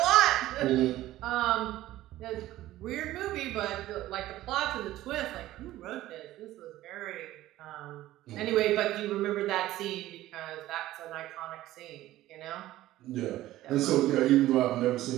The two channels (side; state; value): left; quieter; 15.3 dB